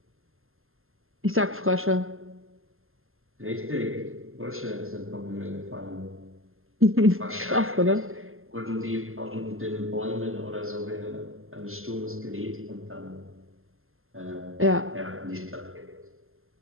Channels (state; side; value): late; left; 0.61 ms